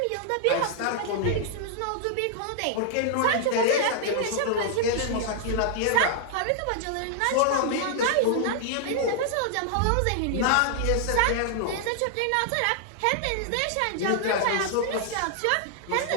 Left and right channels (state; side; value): different; both; correlation -0.01